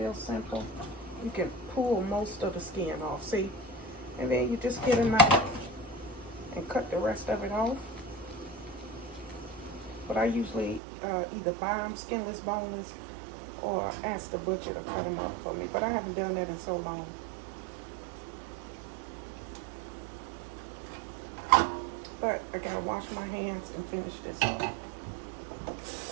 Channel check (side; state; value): left; drops out; at 10.8 s